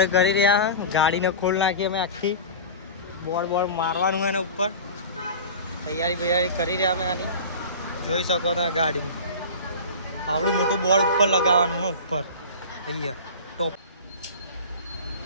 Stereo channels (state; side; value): inverted; both; correlation -0.33